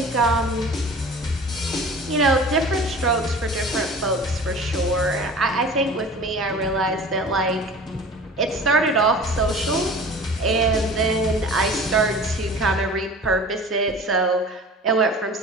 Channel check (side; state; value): both; normal; correlation 0.41